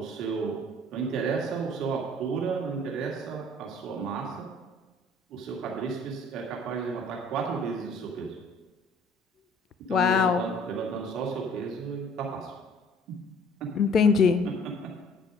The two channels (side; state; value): both; normal; correlation 0.54